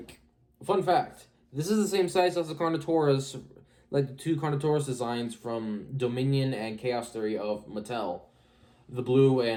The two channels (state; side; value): identical; both; correlation 1.00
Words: Fun fact. This is the same size as the Carnotaurus, like the two Carnotaurus designs from Dominion and Chaos Theory of Mattel. The blue